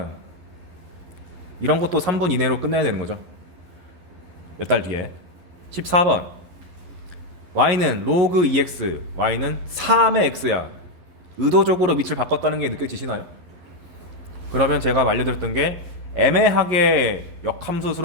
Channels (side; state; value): left; late; 11 ms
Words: 이런 것도 3분 이내로 끝내야 되는 거죠. 몇 달 뒤에. 14번. y는 로그 2x, y는 3의 x야. 의도적으로 밑을 바꿨다는 게 느껴지시나요? 그러면 제가 알려드렸던 게 애매하게